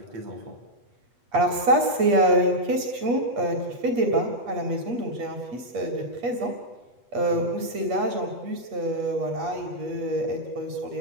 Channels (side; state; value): left; late; 8.5 ms